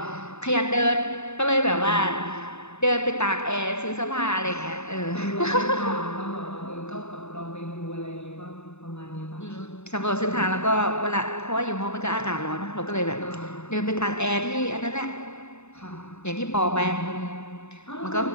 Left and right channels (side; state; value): right; late; 0.81 ms